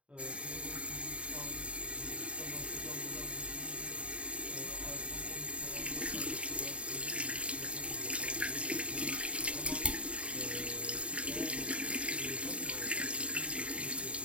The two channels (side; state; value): left; late; 0.061 ms